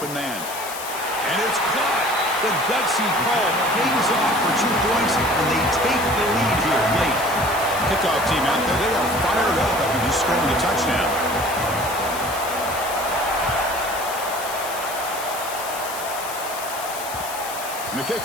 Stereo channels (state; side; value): noise; left; hiss, 10 dB below the sound